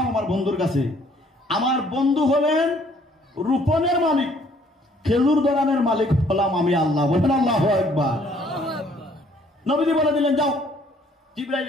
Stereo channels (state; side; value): normal; both; correlation 0.62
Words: আমার বন্ধুর কাছে। আমার বন্ধু হলেন রোপণের মালিক, খেজুর ধরানোর মালিক হলাম আমি আল্লাহ। বলেন আল্লাহু আকবার। নবীজি বলে দিলেন, যাও। জিবরাইল